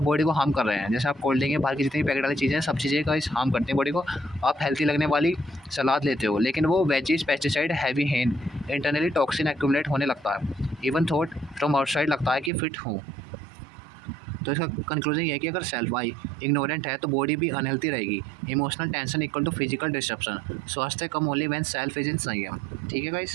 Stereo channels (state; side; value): drops out; left; at 12.5 s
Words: बॉडी को हार्म कर रहे हैं। जैसे आप कोल्ड ड्रिंक, बाहर की जितनी पैकेट वाली चीज़ें, सब चीज़ें का हार्म करते हैं बॉडी को। आप हेल्थी लगने वाली सलाद लेते हो लेकिन वो veggies, pesticide, heavy hand, internally toxin accumulate होने लगता है, इवन थॉट फ्रॉम आउटसाइड लगता है कि फिट हो। तो इसका कंक्लूजन ये है कि अगर सेल्फ आई इग्नोरेंट है तो बॉडी भी अनहेल्थी रहेगी। Emotional tension equal to physical disruption, स्वास्थ्य come only when self is in संयम, ठीक है